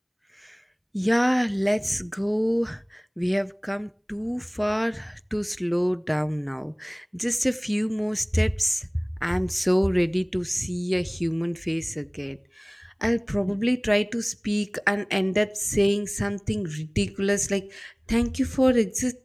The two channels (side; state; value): both; identical; correlation 1.00